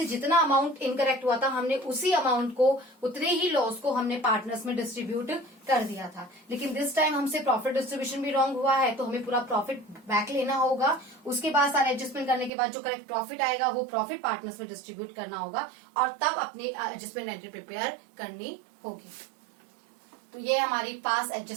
जितना अमाउंट इनकरेक्ट हुआ था हमने उसी अमाउंट को, उतने ही लॉस को हमने पार्टनर्स में डिस्ट्रीब्यूट कर दिया था। लेकिन दिस टाइम हमसे प्रॉफिट डिस्ट्रीब्यूशन भी रॉन्ग हुआ है, तो हमें पूरा प्रॉफिट बैक लेना होगा। उसके बाद सारे एडजस्टमेंट करने के बाद जो करेक्ट प्रॉफिट आएगा वो प्रॉफिट पार्टनर्स में डिस्ट्रीब्यूट करना होगा और तब अपनी एडजस्टमेंट एंट्री प्रिपेयर करनी होगी। तो ये हमारी पास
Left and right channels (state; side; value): drops out; left; at 12.5 s